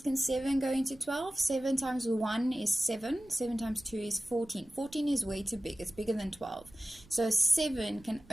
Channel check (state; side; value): noise; right; rumble, 24 dB below the sound